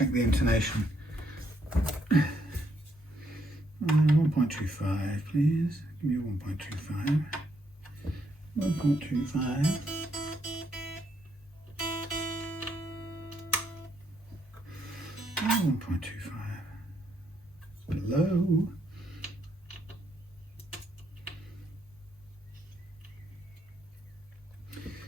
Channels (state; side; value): normal; both; correlation 0.74